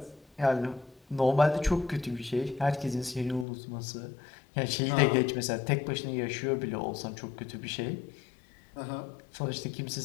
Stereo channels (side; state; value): right; drops out; at 3.5 s